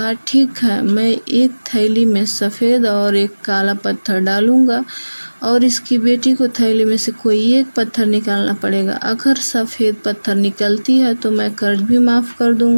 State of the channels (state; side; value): inverted; both; correlation -1.00